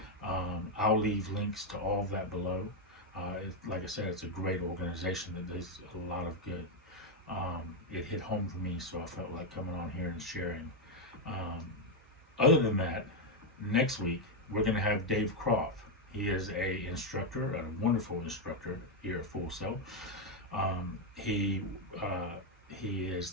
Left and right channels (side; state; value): both; normal; correlation 0.03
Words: I'll leave links to all of that below. Like I said, it's a great organization that does a lot of good. It hit home for me, so I felt like coming on here and sharing. Other than that, next week we're going to have Dave Croft. He is a instructor, a wonderful instructor here at Full Sail. He is